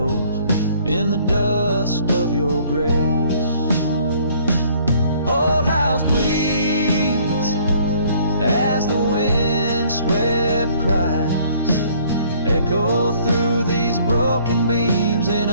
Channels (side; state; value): both; inverted; correlation -0.60